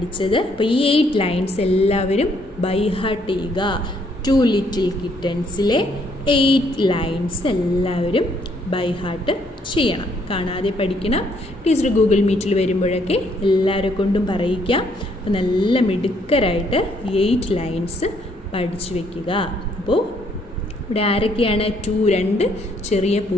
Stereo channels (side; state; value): both; normal; correlation 0.68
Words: അപ്പോൾ ഈ 8 lines എല്ലാവരും by heart ചെയ്യുക. 2 little കിറ്റൻസിലെ 8 lines എല്ലാവരും by heart ചെയ്യണം, കാണാതെ പഠിക്കണം. ടീച്ചർ ഗൂഗിൾ മീറ്റിൽ വരുമ്പോഴൊക്കെ എല്ലാവരെ കൊണ്ടും പറയിക്കാം. അപ്പോൾ നല്ല മിടുക്കരായിട്ട് 8 ലൈൻസ് പഠിച്ചു വയ്ക്കുക. അപ്പോൾ ഇവിടെ ആരൊക്കെയാണ്? രണ്ട് ചെറിയ